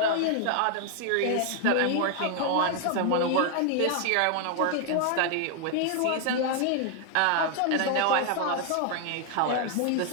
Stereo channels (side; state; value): both; different; correlation 0.00